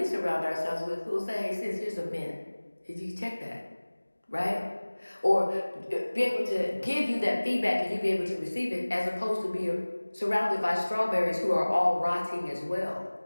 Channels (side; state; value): both; inverted; correlation -1.00